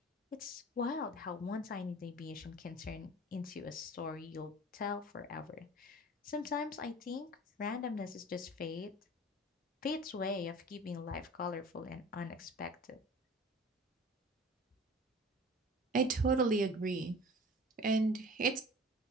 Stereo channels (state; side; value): normal; both; correlation 0.42